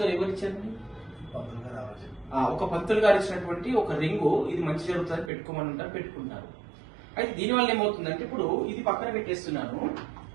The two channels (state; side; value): drops out; left; at 5.3 s